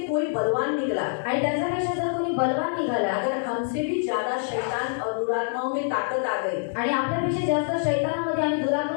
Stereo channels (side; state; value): right; silent; digital silence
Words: कोई बलवान निकला, आणि त्याच्यापेक्षा जर कोणी बलवान निघाला, अगर हमसे भी ज्यादा शैतान और दुरात्माओं में ताकत आ गई, आणि आपल्यापेक्षा जास्त शैतानामध्ये आणि